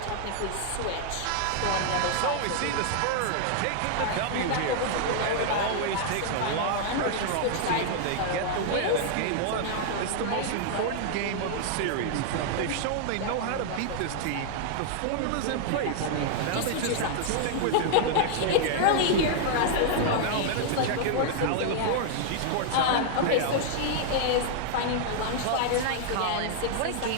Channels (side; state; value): both; different; correlation -0.01